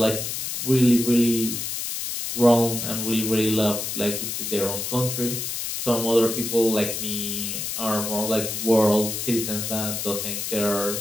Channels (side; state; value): left; noise; hiss, 4 dB below the sound